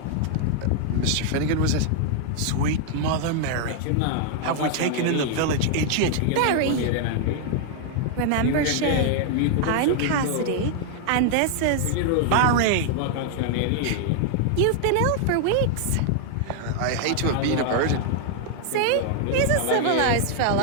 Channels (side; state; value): both; different; correlation 0.00